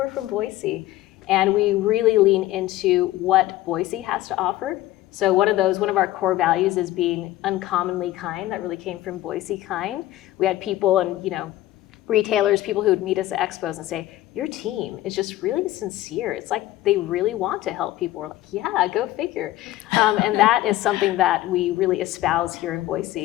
from Boise. And we really lean into what Boise has to offer. So one of our core values is being uncommonly kind. That really came from Boise Kind. We had people and retailers, people who would meet us at expos and say, your team is just really sincere. It's like they really want to help people. We're like, yeah, go figure. And that is something that we really espouse here in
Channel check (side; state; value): right; quieter; 15.4 dB